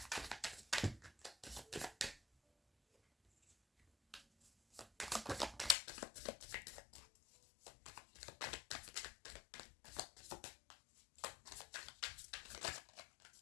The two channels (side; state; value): right; drops out; at 5.8 s